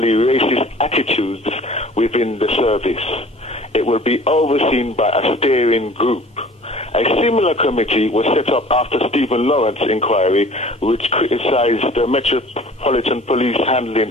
racist attitudes within the service. It will be overseen by a steering group. A similar committee was set up after Stephen Lawrence's inquiry, which criticized the Metropolitan Police handling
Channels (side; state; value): both; normal; correlation 0.47